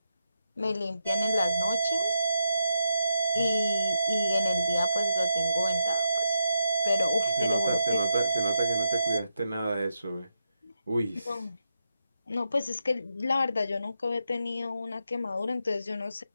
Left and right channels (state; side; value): inverted; both; correlation -0.83